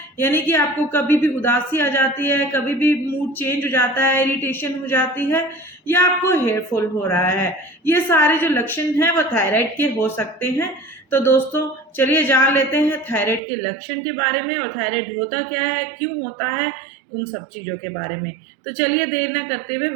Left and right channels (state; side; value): drops out; left; at 13.4 s